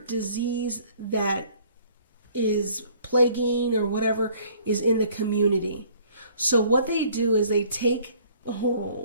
disease that is plaguing or whatever is in the community. So what they do is they take,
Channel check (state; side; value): inverted; both; correlation -0.57